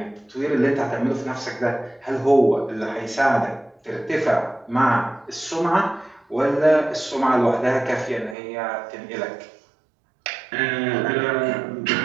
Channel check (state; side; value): drops out; left; at 8.3 s